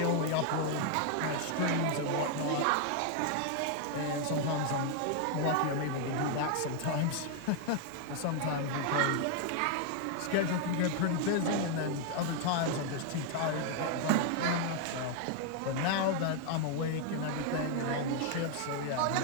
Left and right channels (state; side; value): different; both; correlation 0.00